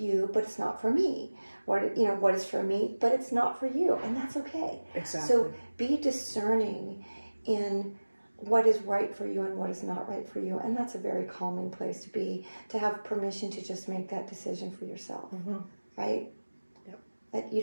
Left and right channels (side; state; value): both; inverted; correlation -1.00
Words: but it's not for me. What is for me, but it's not for you. And that's okay. Exactly. So be discerning in what is right for you and what is not right for you. And that's a very calming place to be, to have permission to just make that decision for yourself. Right? Yep. That you